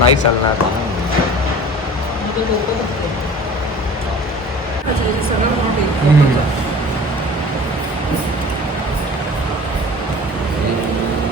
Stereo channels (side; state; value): both; normal; correlation 0.42